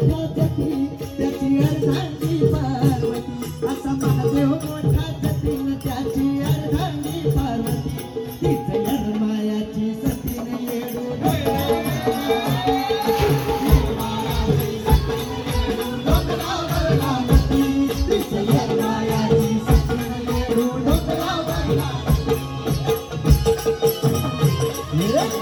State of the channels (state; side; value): identical; both; correlation 1.00